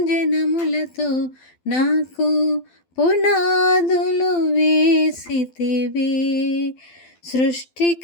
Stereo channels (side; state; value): right; late; 12 ms